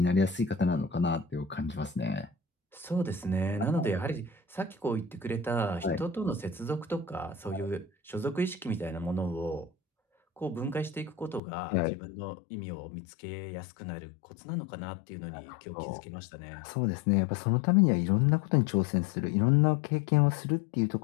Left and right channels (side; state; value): right; drops out; at 11.4 s